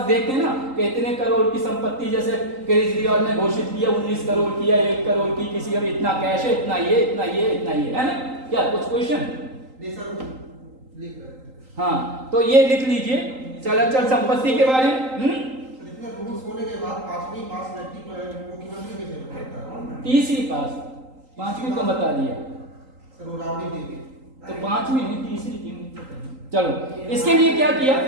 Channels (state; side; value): late; left; 3.8 ms